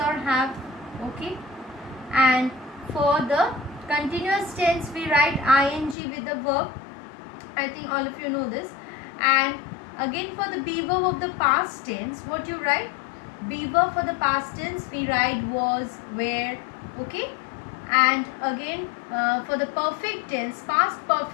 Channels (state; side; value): drops out; right; at 6.0 s